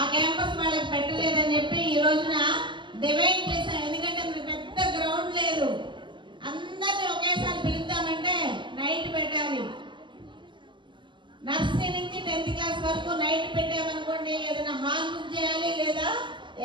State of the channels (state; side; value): late; left; 0.23 ms